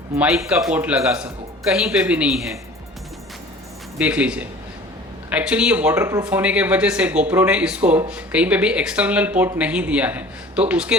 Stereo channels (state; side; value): normal; both; correlation 0.44